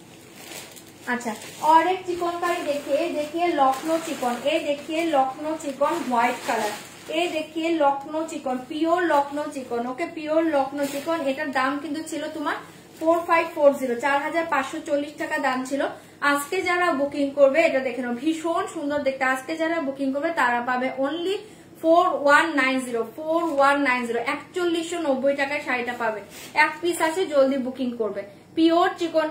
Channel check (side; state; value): both; identical; correlation 1.00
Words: अच्छा, और एक चिकनकारी देखिए लखनऊ चिकन। ये देखिए लखनऊ चिकन व्हाइट कलर। ये देखिए Lucknow chikan, pure Lucknow chikan. Okay, pure Lucknow chikan. एटार दाम किन्तु छिलो तुम्हार 4540, 4540 টাকা দাম ছিল। আজকে যারা বুকিং করবে এটা দেখে নাও, ভীষণ সুন্দর দেখতে। আজকে যারা বুকিং করবে তারা পাবে অনলি 4190, 4190, 4190 টাকায় শাড়িটা পাবে। এক পিস আছে, জলদি বুকিং করবে। পিওর